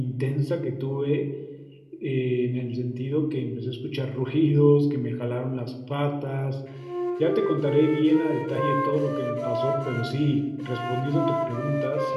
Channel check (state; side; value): identical; both; correlation 1.00